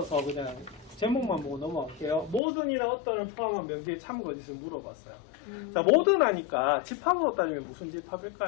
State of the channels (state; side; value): drops out; right; at 2.4 s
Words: 그냥 제목만 보고 넘어갈게요. 모든이나 어떤을 포함한 명제의 참거짓을 물어봤어요. 자, 모든 하니까 집합으로 따지면 무슨